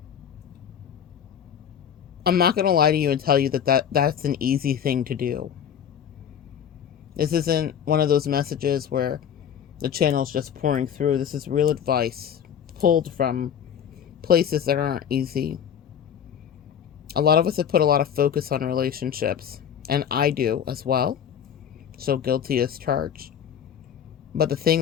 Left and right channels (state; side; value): quieter; right; 8.7 dB